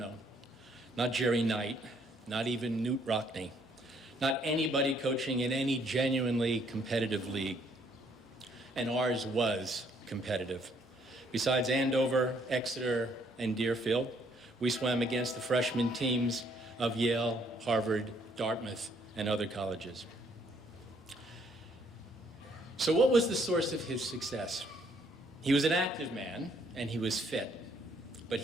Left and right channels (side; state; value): both; normal; correlation 0.67